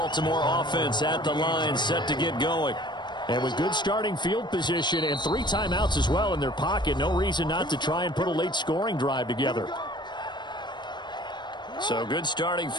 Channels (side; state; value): right; late; 0.22 ms